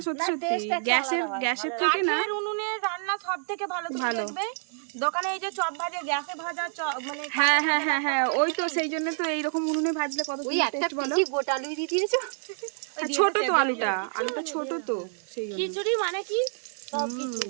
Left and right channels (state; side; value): silent; left; digital silence